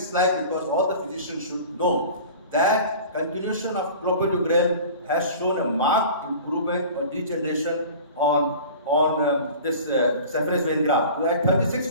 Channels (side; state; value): both; inverted; correlation -0.40